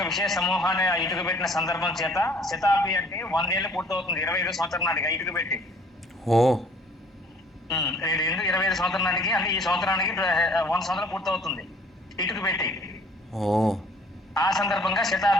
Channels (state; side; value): normal; both; correlation 0.56